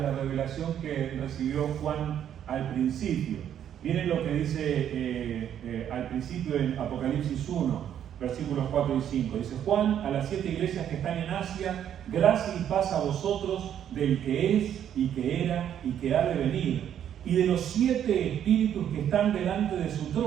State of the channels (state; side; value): quieter; left; 9.8 dB